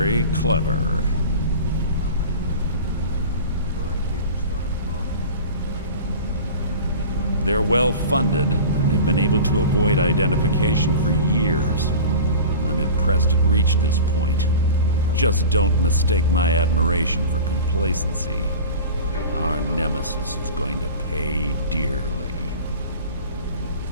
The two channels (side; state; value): both; inverted; correlation -0.36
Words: clever. They're well funded, and they've been able to avoid identification for years. I'm impressed it reached this point. Just don't mistake my admiration for complacency. Our nemesis is going to pay dearly.